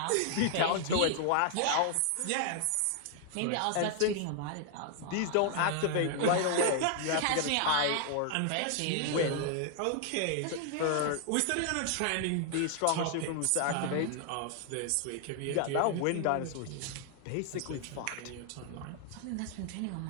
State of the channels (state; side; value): different; both; correlation 0.00